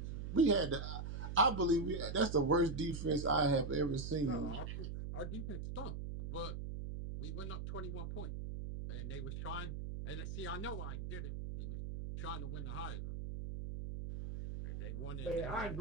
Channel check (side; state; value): right; noise; hum, 5 dB below the sound